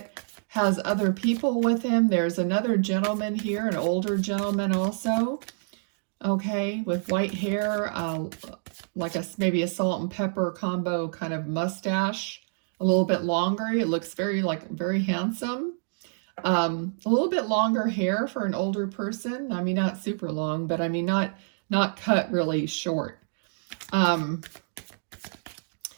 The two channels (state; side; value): silent; left; digital silence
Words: has other people with him, there's another gentleman here, an older gentleman also. Okay, with white hair, like maybe a salt and pepper combo kind of mustache, a little bit longer. It looks very handsome. A little bit longer hair for an older person. I mean, not super long, but I mean, not cut really short.